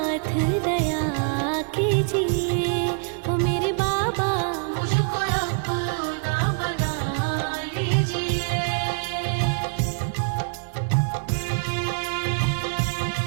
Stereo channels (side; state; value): left; quieter; 39.9 dB